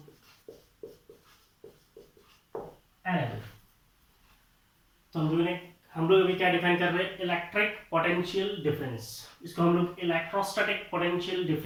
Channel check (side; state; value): both; identical; correlation 1.00